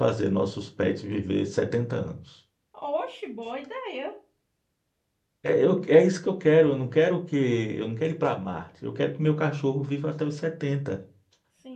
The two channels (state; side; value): identical; both; correlation 1.00